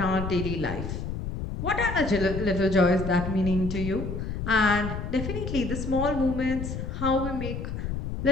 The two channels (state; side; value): noise; left; rumble, 5 dB below the sound